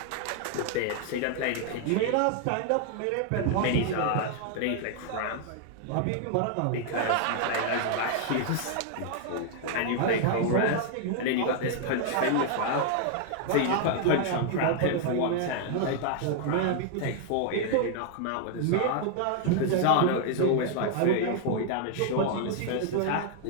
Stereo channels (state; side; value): different; both; correlation 0.00